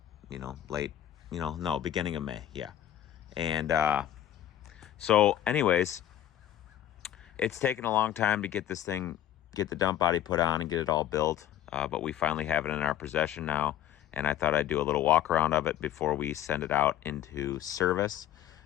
beginning of May, yeah. And so anyways, it's taken a long time to get this thing, get the dump body put on and get it all built, but we finally have it in our possession now, and I thought I'd do a little walk around of it before we send it out into service.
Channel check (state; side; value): quieter; right; 11.5 dB